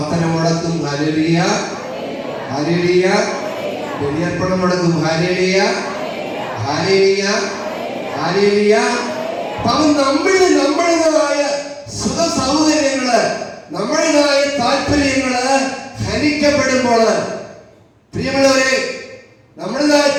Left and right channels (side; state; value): both; identical; correlation 1.00